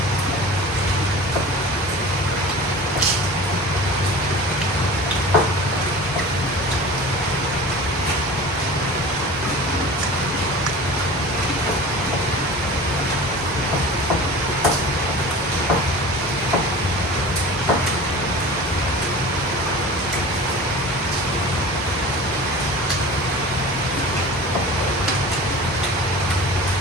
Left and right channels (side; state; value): both; normal; correlation 0.37